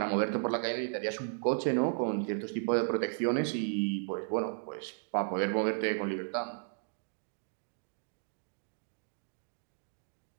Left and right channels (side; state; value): left; silent; digital silence